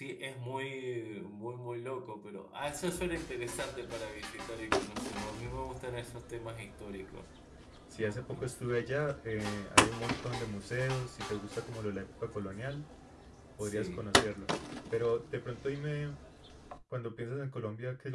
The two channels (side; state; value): both; identical; correlation 1.00